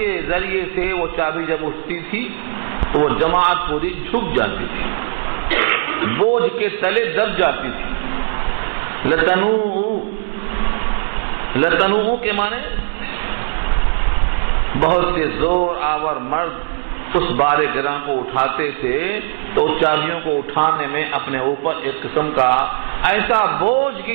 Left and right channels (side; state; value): left; silent; digital silence